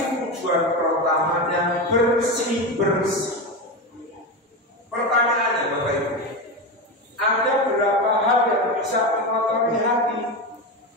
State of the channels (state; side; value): normal; both; correlation 0.18